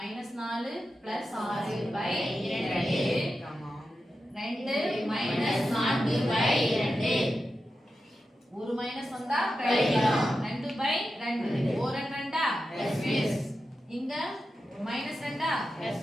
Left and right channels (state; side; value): normal; both; correlation 0.91